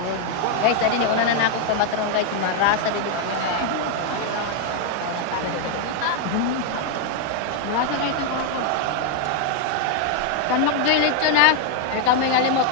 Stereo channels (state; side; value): different; both; correlation 0.00